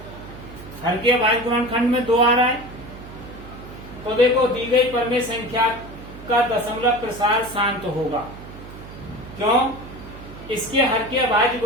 हर के अभाज्य गुणनखंड में 2 आ रहा है। तो देखो दी गई परमेय संख्या का दशमलव प्रसार शांत होगा। क्यों? इसके हर के अभाज्य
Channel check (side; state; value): right; noise; hum, 15 dB below the sound